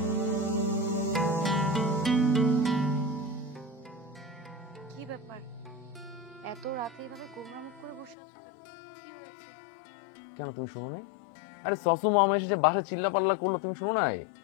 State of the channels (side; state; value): right; drops out; at 8.2 s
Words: কি ব্যাপার, এত রাতে এইভাবে গোমরা মুখ করে বসে আছো কেন? কি হয়েছে? কেন তুমি শোনো নাই? আরে সসু মামা এসে বাসায় চিল্লা পাল্লা করলো, তুমি শোনো নাই?